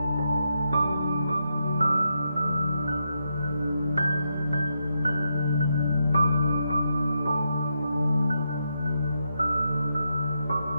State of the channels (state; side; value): inverted; both; correlation -0.83